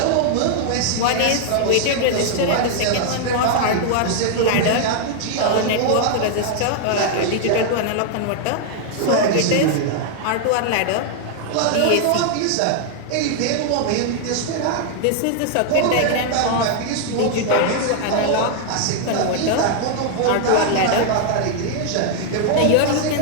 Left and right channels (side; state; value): both; different; correlation -0.01